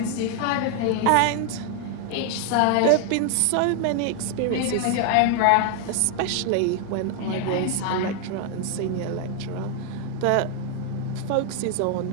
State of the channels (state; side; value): different; both; correlation 0.00